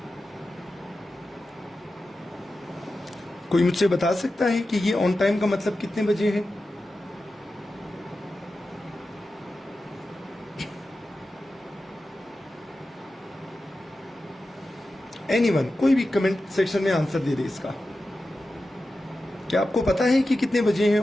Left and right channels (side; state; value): both; normal; correlation 0.93